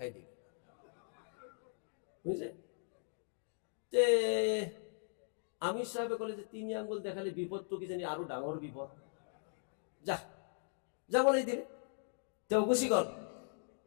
দিল, বুঝছে? তে আমির সাহেবে কলে যে 3 আঙ্গুল দেখালে বিপদ তো কি জানি আরো ডাঙর বিপদ, যা বলেই দিলে। তেও গুচি গল,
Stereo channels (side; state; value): right; silent; digital silence